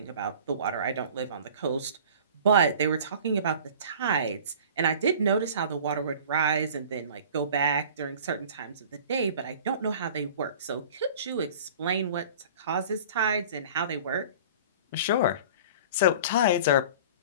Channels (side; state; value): both; inverted; correlation -0.43